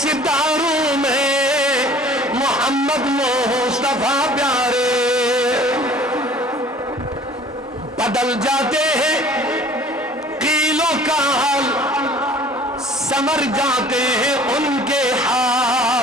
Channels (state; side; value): normal; both; correlation 0.49